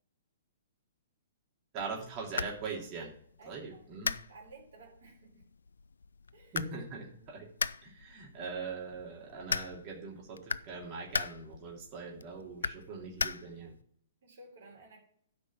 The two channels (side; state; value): both; inverted; correlation -0.63